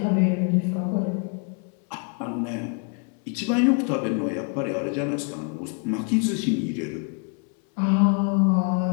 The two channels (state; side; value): quieter; right; 38.6 dB